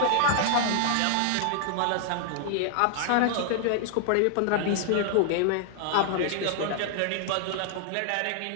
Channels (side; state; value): both; different; correlation 0.00